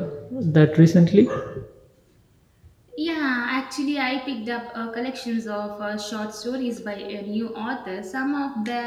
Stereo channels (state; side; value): identical; both; correlation 1.00